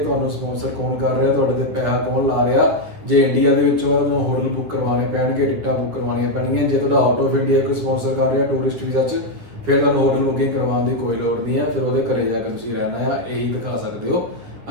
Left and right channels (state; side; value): late; left; 10 ms